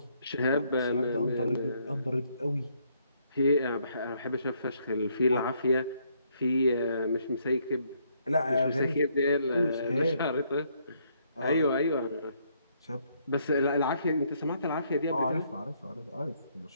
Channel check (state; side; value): inverted; both; correlation -0.70